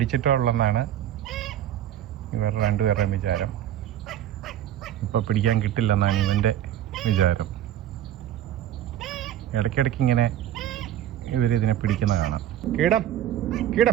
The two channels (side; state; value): left; quieter; 11.6 dB